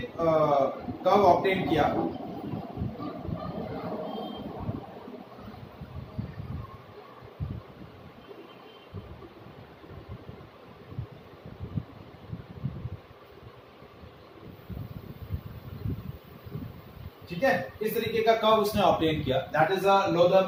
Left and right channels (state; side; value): identical; both; correlation 1.00